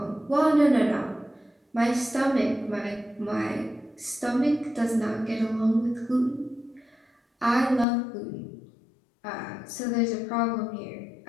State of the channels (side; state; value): right; drops out; at 7.9 s